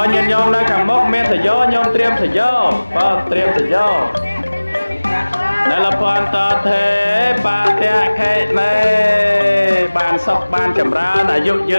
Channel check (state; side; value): inverted; both; correlation -1.00